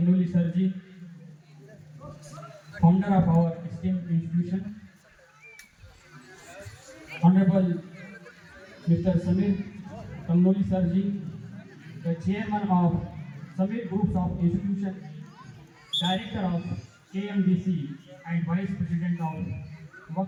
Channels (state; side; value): identical; both; correlation 1.00